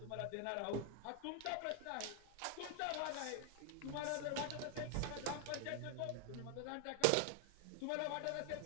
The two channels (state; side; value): different; both; correlation 0.00